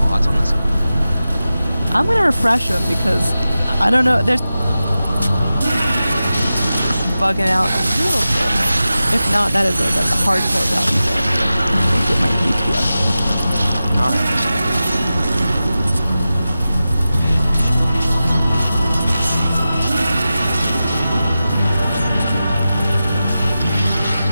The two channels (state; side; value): inverted; both; correlation -0.93